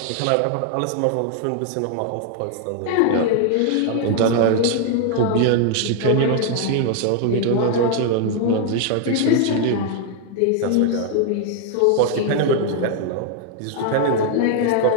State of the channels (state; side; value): different; both; correlation 0.00